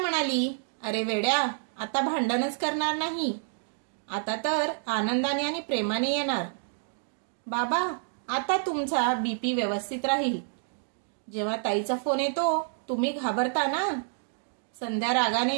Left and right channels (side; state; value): left; silent; digital silence